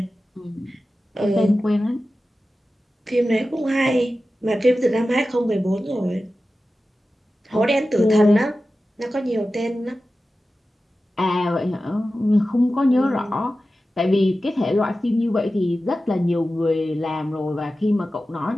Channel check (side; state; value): both; normal; correlation 0.94